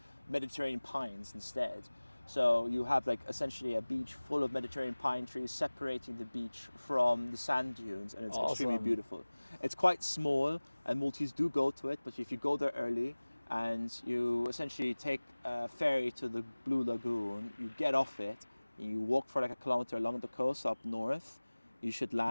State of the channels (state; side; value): inverted; both; correlation -1.00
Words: Mediterranean pines instead. So you have like essentially a beach full of Mediterranean pine trees separating the beach from the sand dunes, and it's extremely beautiful. It's quite small and Maltese do go to it, but if you go there early and you essentially take a ferry to the Blue Lagoon, you get off it, and you walk for like a kilometer along the coast up north, you should